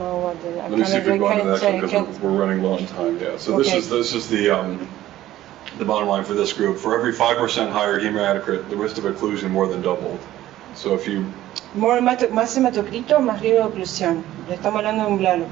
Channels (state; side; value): quieter; left; 14.2 dB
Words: what the, Let me see if we can go into that because we're running low on time. Yeah. So okay. This is the bottom line for this group. For every 5% higher hematocrit, the risk of occlusion more than doubled. So if you más hematocrito, más riesgo de oclusión. Le estamos hablando de un blood